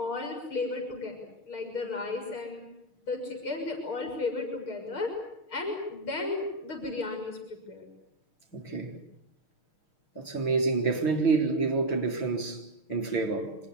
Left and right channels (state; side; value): late; right; 6.5 ms